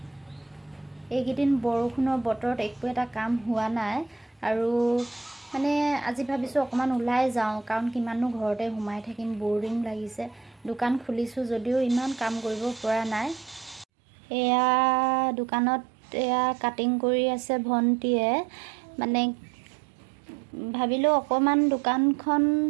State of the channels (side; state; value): left; drops out; at 13.9 s